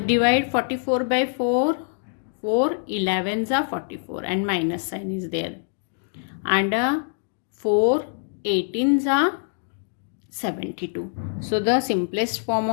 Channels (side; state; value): right; silent; digital silence